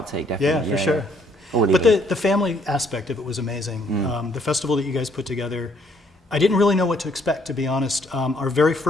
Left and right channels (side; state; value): both; normal; correlation 0.67